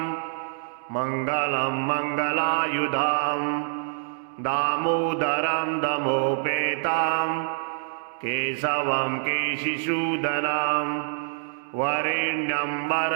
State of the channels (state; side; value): silent; left; digital silence